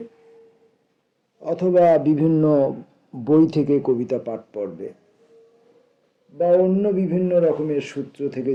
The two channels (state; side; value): identical; both; correlation 1.00